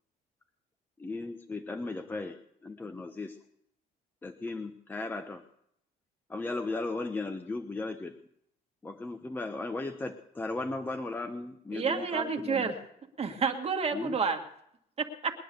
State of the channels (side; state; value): both; normal; correlation 0.49